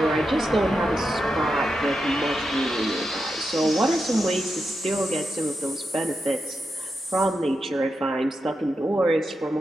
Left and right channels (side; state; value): both; normal; correlation 0.87